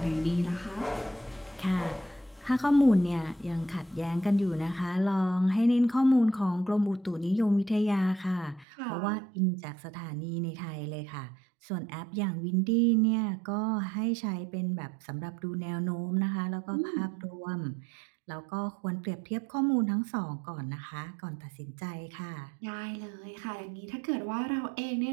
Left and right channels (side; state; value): left; drops out; at 8.7 s